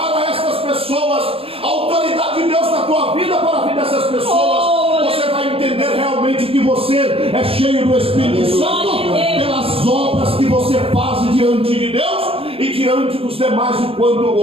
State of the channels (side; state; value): left; late; 0.27 ms